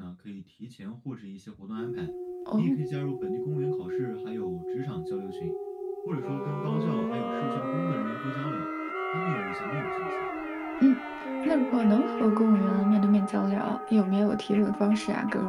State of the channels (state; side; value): identical; both; correlation 1.00